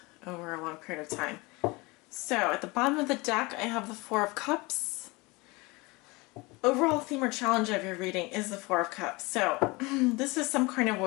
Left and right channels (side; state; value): right; quieter; 24.6 dB